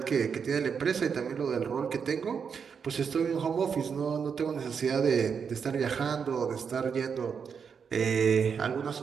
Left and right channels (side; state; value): left; quieter; 6.5 dB